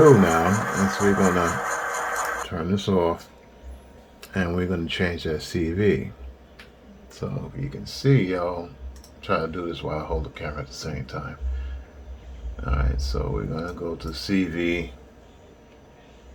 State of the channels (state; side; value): identical; both; correlation 1.00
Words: now is we're gonna turn this off and we're gonna change that CV. So you can see, y'all, try to do this while I hold the camera at the same time. Alright, so we're gonna go to CV